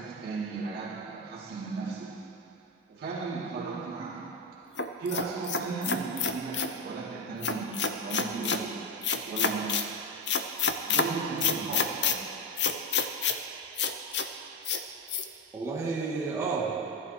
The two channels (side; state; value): both; normal; correlation 0.12